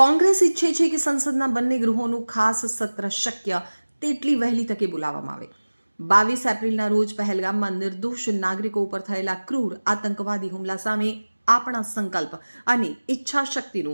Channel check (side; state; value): both; inverted; correlation -1.00